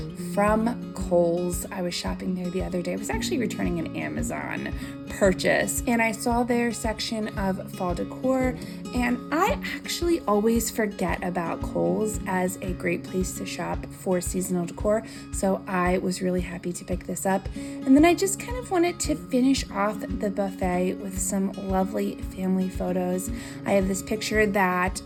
from Kohl's. I was shopping there the other day. I was actually returning an Amazon purchase, and I saw their section of fall decor, and I actually always forget about Kohl's as a great place to shop for seasonal decor, so I was really happy to pick this up. And then I just kind of wanted to finish off the buffet with some lovely family photos. I have this picture that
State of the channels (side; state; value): both; identical; correlation 1.00